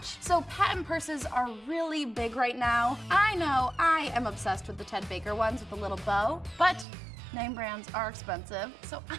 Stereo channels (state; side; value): drops out; left; at 6.9 s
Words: So patent purses are really big right now. I know I am obsessed with the Ted Baker ones with the little bow, but name brands are expensive, so